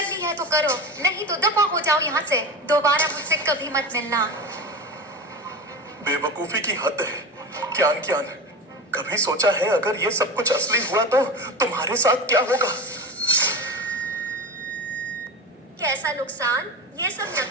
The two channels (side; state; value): both; normal; correlation 0.27